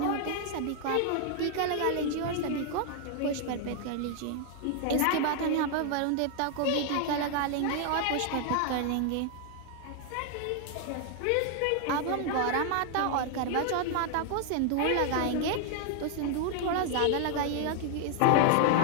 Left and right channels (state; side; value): different; both; correlation 0.00